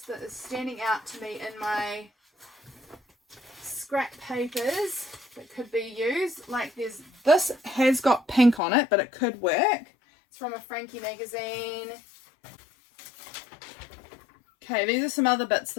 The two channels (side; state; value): right; drops out; at 8.6 s